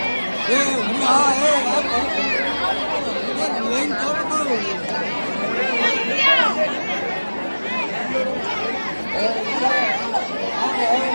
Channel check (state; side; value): inverted; both; correlation -1.00